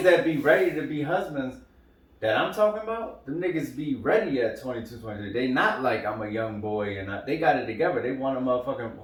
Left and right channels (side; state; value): both; identical; correlation 1.00